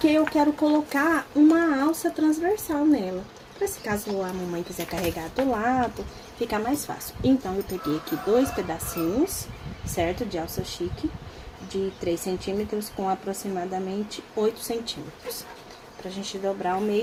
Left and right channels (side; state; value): both; identical; correlation 1.00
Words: eu quero colocar uma alça transversal nela. Pra se caso a mamãe quiser carregar do lado, fica mais fácil. Então, eu peguei aqui 2 pedacinhos, certo? De alça chique, de 3 centímetros com aproximadamente 8 centímetros. Pra gente dobrar ao